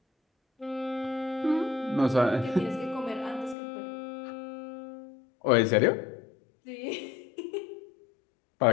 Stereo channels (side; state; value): right; drops out; at 3.6 s